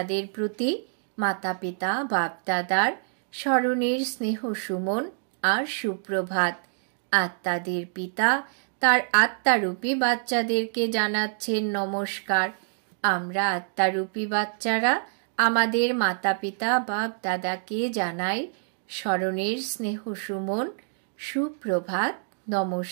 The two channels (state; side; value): silent; left; digital silence